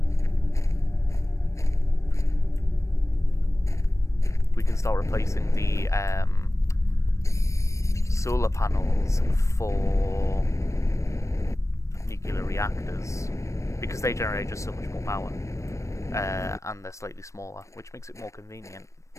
the solar panels for nuclear reactors, because they generate just so much more power, and they're slightly smaller, which makes it more convenient,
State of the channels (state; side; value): late; right; 0.15 ms